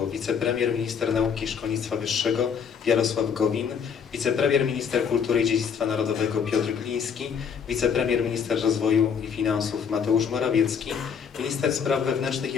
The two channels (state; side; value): quieter; right; 6.9 dB